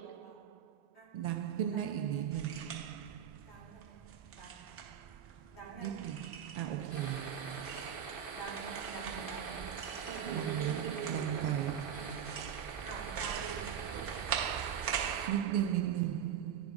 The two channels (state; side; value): quieter; left; 8.6 dB